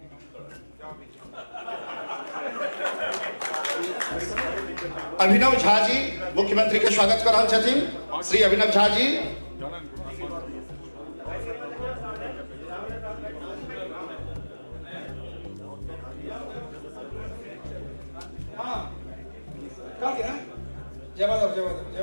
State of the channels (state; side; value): inverted; both; correlation -1.00